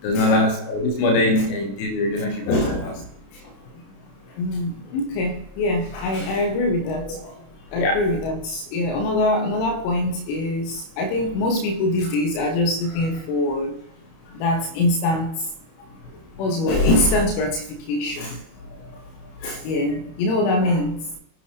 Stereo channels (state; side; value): late; right; 31 ms